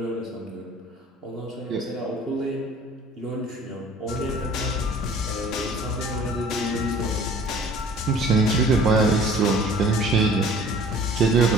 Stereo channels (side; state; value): both; normal; correlation 0.49